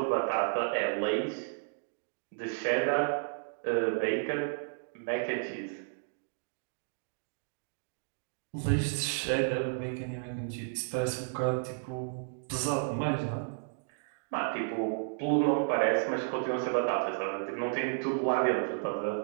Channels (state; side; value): silent; left; digital silence